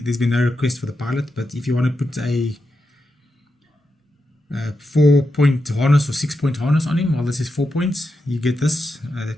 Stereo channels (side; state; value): both; normal; correlation 0.87